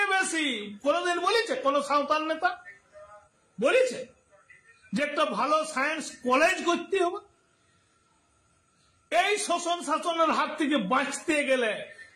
বেশি। কোনদিন বলেছে কোন সাঁওতাল নেতা বলেছে যে একটা ভালো সায়েন্স কলেজ করতে হবে? এই শোষণ শাসনের হাত থেকে বাঁচতে গেলে,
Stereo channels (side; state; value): both; identical; correlation 1.00